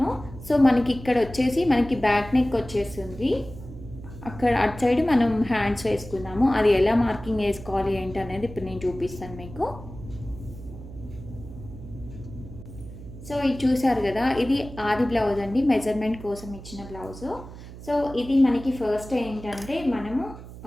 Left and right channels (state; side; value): noise; right; hum, 14 dB below the sound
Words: సో మనకి ఇక్కడ వచ్చేసి మనకి బ్యాక్ నెక్ వచ్చేస్తుంది. అక్కడ అటు సైడ్ మనం హ్యాండ్స్ వేసుకున్నాము. అది ఎలా మార్కింగ్ వేసుకోవాలి ఏంటి అనేది ఇప్పుడు నేను చూపిస్తాను మీకు. సో ఇది చూసారు కదా, ఇది ఆది బ్లౌజ్ అండి, మెజర్మెంట్ కోసం ఇచ్చిన బ్లౌజు. సో ఇది మనకి ఫస్ట్ ఏంటంటే, మనము